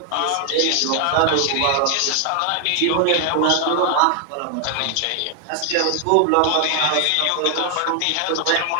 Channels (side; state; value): both; different; correlation 0.00